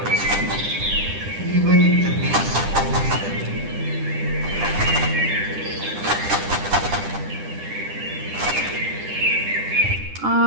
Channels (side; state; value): left; late; 10 ms